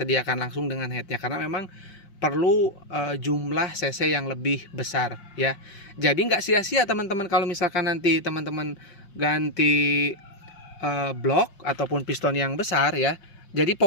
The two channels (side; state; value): right; late; 5.6 ms